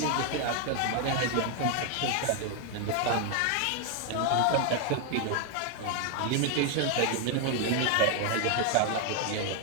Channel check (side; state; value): both; different; correlation 0.01